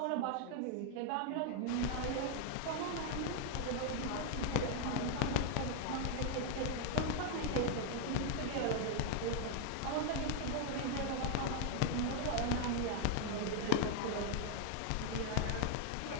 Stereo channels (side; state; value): both; different; correlation 0.00